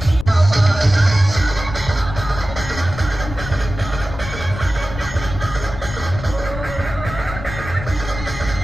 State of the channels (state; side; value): noise; left; rumble, 10 dB below the sound